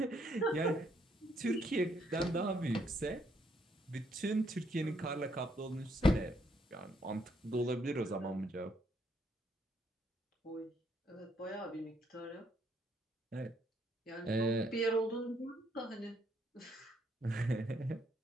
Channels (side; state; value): both; normal; correlation 0.72